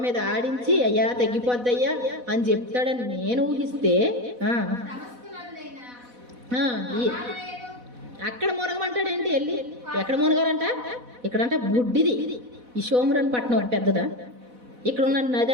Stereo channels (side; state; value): left; late; 4.1 ms